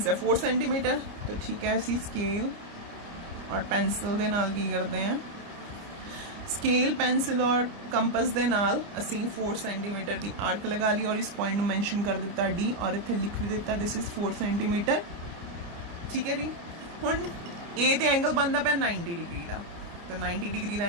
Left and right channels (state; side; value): late; left; 29 ms